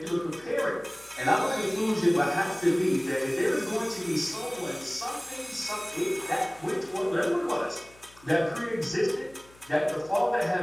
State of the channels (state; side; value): noise; left; hum, 26 dB below the sound